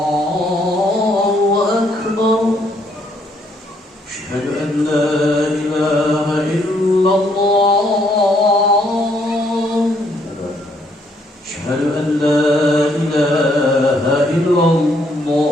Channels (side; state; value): both; normal; correlation 0.70